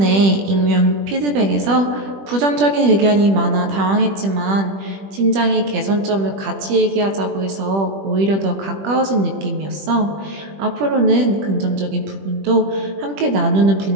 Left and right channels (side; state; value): left; late; 20 ms